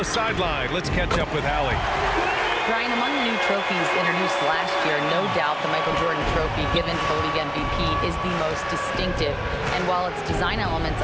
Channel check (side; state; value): both; identical; correlation 1.00